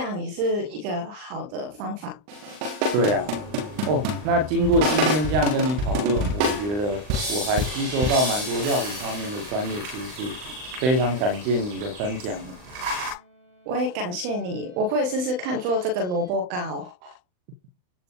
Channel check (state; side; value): late; left; 39 ms